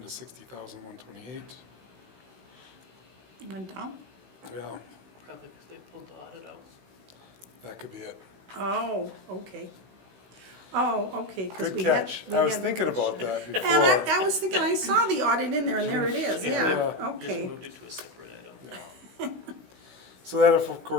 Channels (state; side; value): late; left; 16 ms